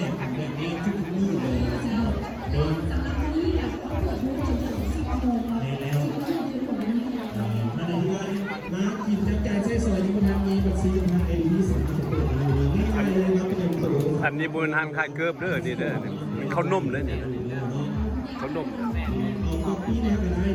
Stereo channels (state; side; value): identical; both; correlation 1.00